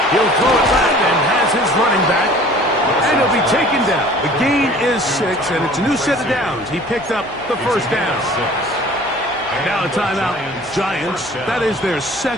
He'll throw it back and has his running back. And he'll be taken down. The gain is 6, and it's a new set of downs. He picked up the first down. Now a timeout. Giants, that is their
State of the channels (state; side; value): noise; left; hum, 22 dB below the sound